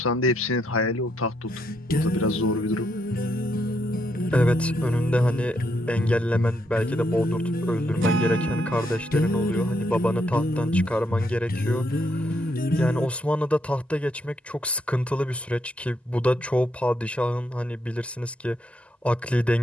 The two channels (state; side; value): normal; both; correlation 0.77